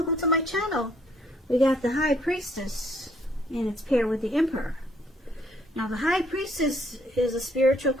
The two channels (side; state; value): both; normal; correlation 0.66